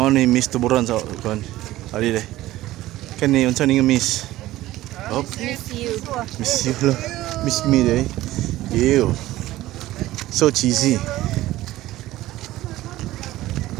ni miss tuburan sa kon. Ali deh. Kan ni unsa ni miss. Up. Miss you lah. Miss me deh. Ew. So cheesy.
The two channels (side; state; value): left; quieter; 16.1 dB